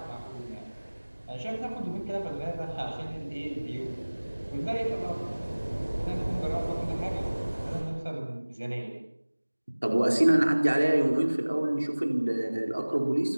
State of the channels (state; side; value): inverted; both; correlation -1.00